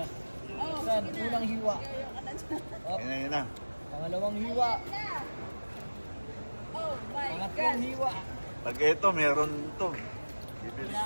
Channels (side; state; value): both; inverted; correlation -1.00